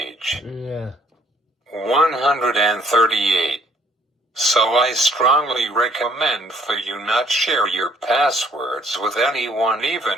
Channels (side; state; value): both; normal; correlation 0.61